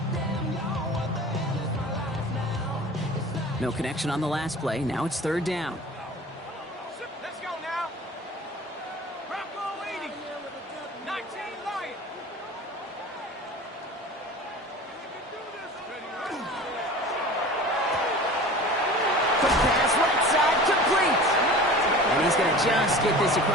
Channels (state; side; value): normal; both; correlation 0.39